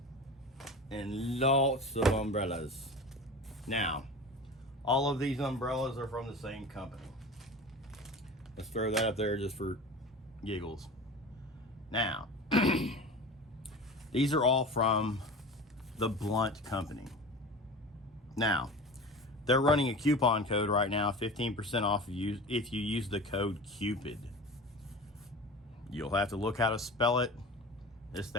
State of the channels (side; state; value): both; normal; correlation 0.34